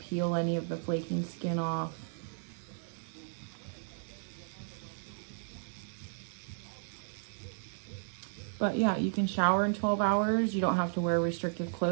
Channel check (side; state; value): left; silent; digital silence